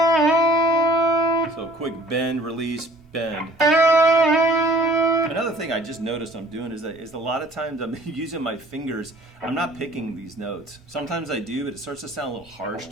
So quick bend, release, bend. Another thing I just noticed I'm doing is a lot of times I'm using my fingers. I'm not picking these notes. Sometimes I do, but it starts to sound a little harsh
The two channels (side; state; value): both; normal; correlation 0.53